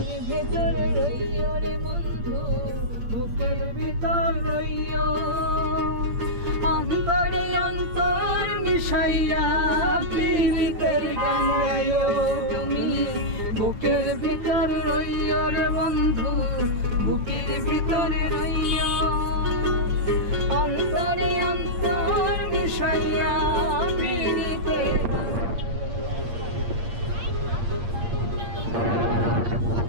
ভেতরে রইও রে বন্ধু, বুকের ভিতর রইও, অন্তরে অন্তর মিশাইয়া পীড়িতের গান গাইও তুমি। বুকের ভিতর রইও রে বন্ধু, বুকের ভিতরে রইও, অন্তরে অন্তর মিশাইয়া পীড়িতের গান।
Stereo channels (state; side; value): late; left; 8.7 ms